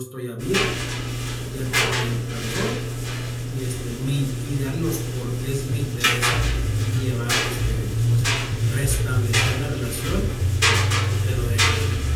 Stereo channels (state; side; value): identical; both; correlation 1.00